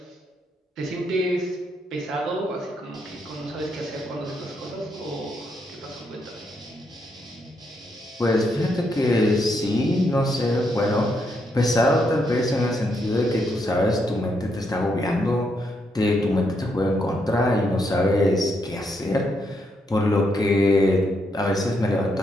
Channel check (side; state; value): both; normal; correlation 0.78